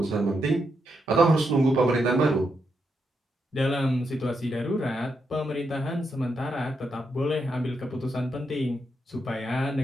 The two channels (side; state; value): both; normal; correlation 0.82